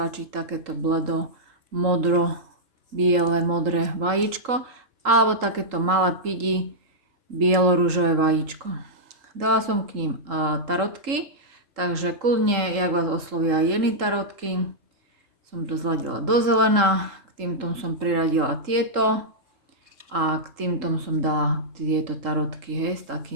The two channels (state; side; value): late; left; 3.7 ms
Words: takéto bledo, modro, biele, modré vajíčko, alebo takéto malé pidi, bielo-ružové vajíčko. Dala som k ním tarotky. Takže kľudne, jak vás oslovia jedny tarotky, som to zladila do zelená, k týmto som priradila tieto a k týmto som dala tieto tarotky, hej, s